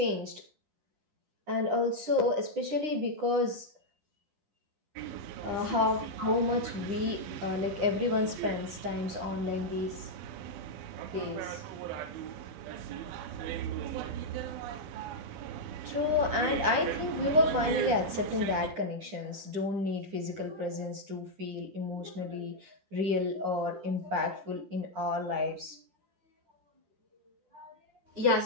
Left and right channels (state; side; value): late; left; 9.9 ms